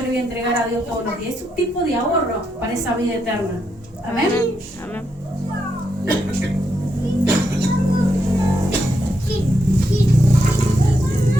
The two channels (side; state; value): both; normal; correlation 0.81